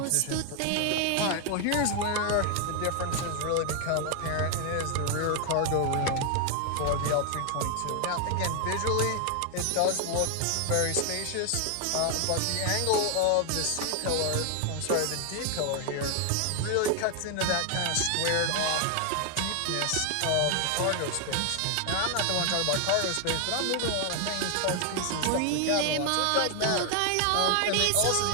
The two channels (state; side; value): different; both; correlation 0.00